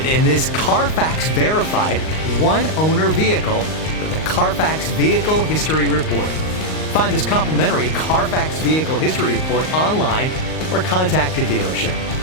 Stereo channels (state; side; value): late; right; 38 ms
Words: in this Carfax verified one-owner vehicle with a Carfax Vehicle History Report. Find this complimentary Carfax Vehicle History Report online or contact the dealership.